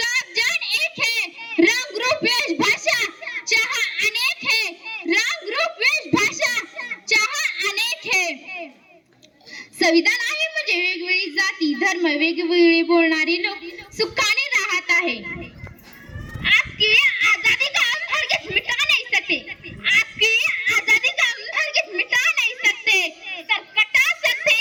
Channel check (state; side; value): identical; both; correlation 1.00